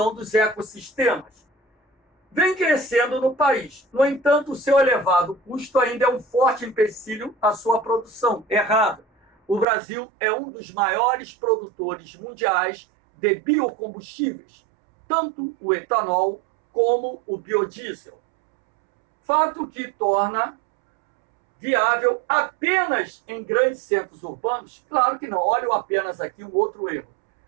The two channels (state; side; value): drops out; left; at 9.7 s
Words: dos ecossistemas. Vem crescendo no país. No entanto, o seu elevado custo ainda é um forte empecilho à sua produção. Errado. O Brasil é um dos maiores produtores mundiais de biocombustíveis, tanto o etanol como o biodiesel. Fato que torna viável apenas em grandes centros urbanos? Claro que não. Olha apenas aqui um outro erro.